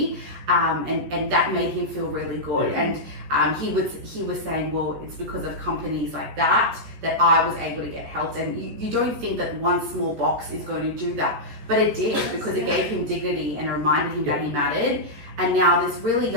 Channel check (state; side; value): late; left; 14 ms